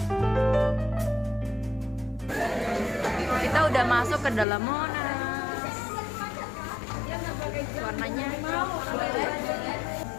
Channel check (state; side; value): drops out; right; at 4.5 s